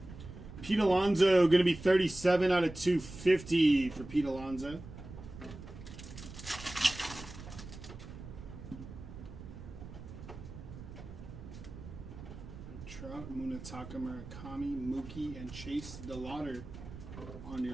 Pete Alonso, going to be 37 out of 250 for Pete Alonso. Munetaka Murakami, Mookie, and Chase DeLauder on your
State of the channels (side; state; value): right; noise; rumble, 13 dB below the sound